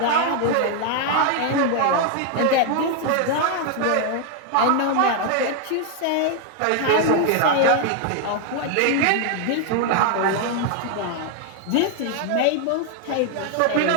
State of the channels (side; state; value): both; different; correlation 0.00